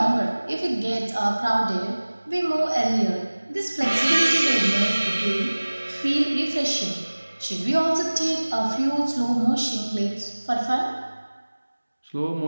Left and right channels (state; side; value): inverted; both; correlation -1.00